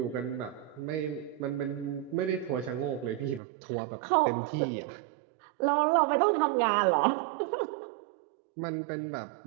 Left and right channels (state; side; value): drops out; left; at 3.4 s